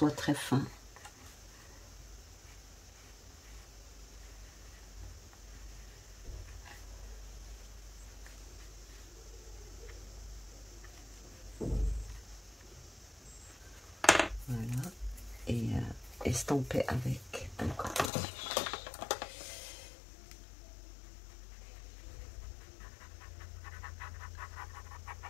très fin. Voilà. Et estamper avec un coton-tige.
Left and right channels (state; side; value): drops out; right; at 18.1 s